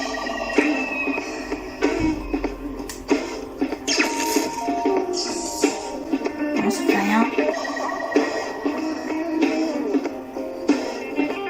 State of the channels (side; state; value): both; identical; correlation 1.00